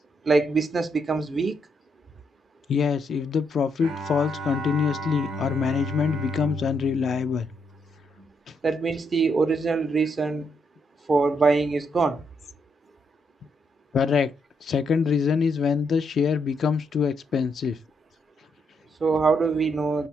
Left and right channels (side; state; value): both; normal; correlation 0.77